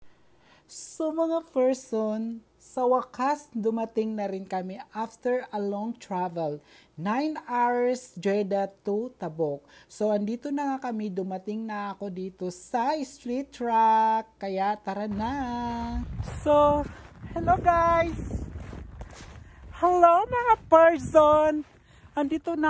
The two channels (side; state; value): both; identical; correlation 1.00